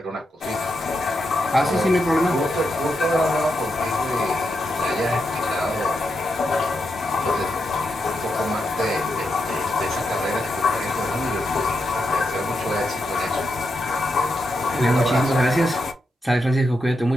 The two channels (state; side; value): normal; both; correlation 0.84